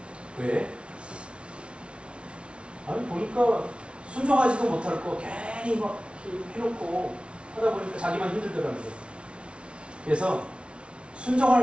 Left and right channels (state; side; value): late; left; 0.059 ms